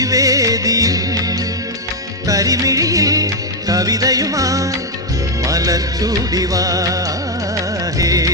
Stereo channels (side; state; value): both; normal; correlation 0.02